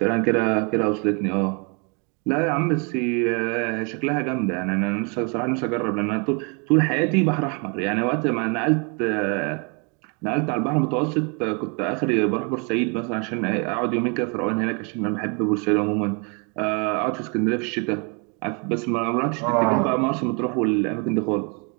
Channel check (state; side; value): quieter; left; 34.7 dB